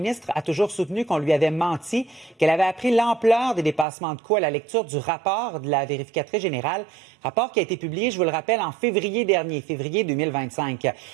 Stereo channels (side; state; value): left; drops out; at 3.9 s